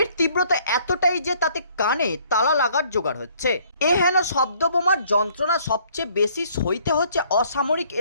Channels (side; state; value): both; inverted; correlation -0.61